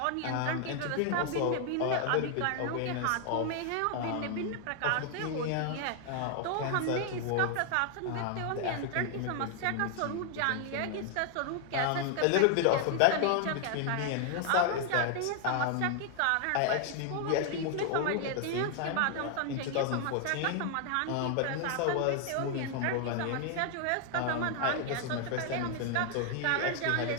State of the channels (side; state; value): both; different; correlation 0.00